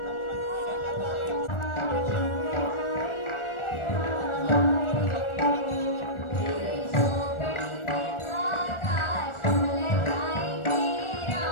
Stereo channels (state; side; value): late; right; 1.4 ms